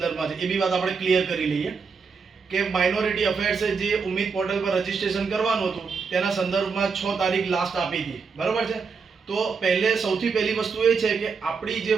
છે, એ બી વાત આપણે ક્લિયર કરી લઈએ કે માઇનોરિટી અફેર્સે જે ઉમ્મીદ પોર્ટલ પર રજીસ્ટ્રેશન કરવાનું હતું તેના સંદર્ભમાં 6 તારીખ લાસ્ટ આપી હતી, બરાબર છે. તો સૌથી પહેલી વસ્તુ એ છે કે આપણી જે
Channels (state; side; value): quieter; left; 5.3 dB